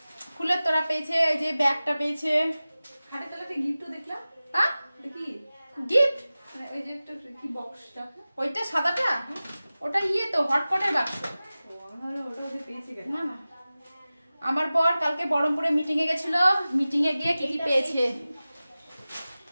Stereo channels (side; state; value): both; inverted; correlation -0.97